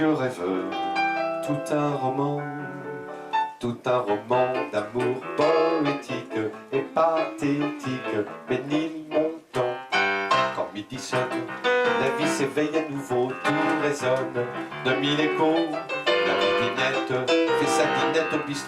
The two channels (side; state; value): both; identical; correlation 1.00